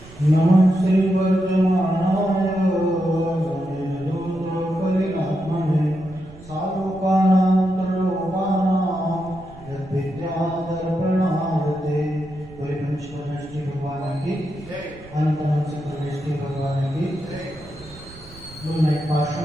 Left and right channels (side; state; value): right; noise; rumble, 19 dB below the sound